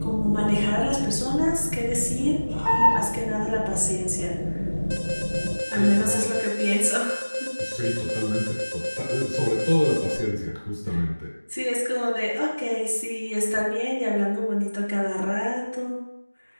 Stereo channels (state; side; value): inverted; both; correlation -1.00